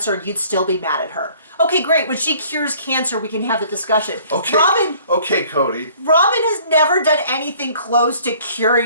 and you'd still be mad at her. Okay, great. When she cures cancer, we can have the discussion. Okay. Okay, Cody. Robin has never done anything close to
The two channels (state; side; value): inverted; both; correlation -0.55